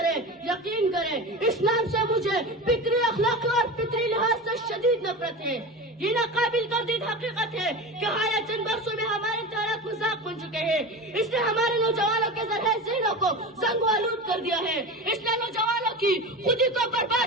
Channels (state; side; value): normal; both; correlation 0.28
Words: کریں اسلام سے مجھے فکری، اخلاقی اور فطری لحاظ سے شدید نفرت ہے۔ یہ ناقابل تردید حقیقت ہے کہ حالیہ چند برسوں میں ہمارے امتحانات مذاق بن چکے ہیں۔ اس نے ہمارے نوجوانوں کے ذرائع ذہنوں کو زنگ و آلود کر دیا ہے۔ اس نے نوجوانوں کی خودی کو